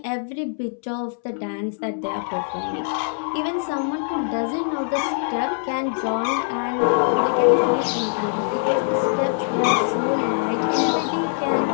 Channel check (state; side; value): silent; right; 63 dB below the other